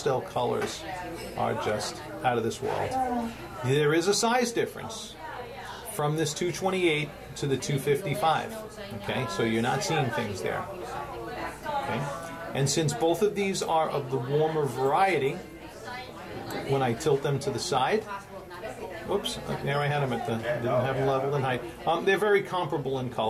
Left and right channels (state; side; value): identical; both; correlation 1.00